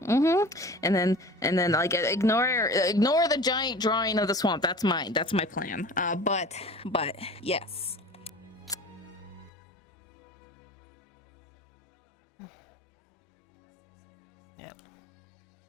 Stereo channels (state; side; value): drops out; right; at 9.5 s